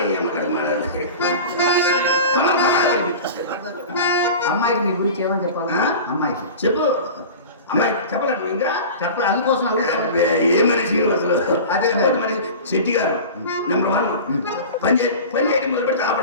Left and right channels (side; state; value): both; inverted; correlation -0.35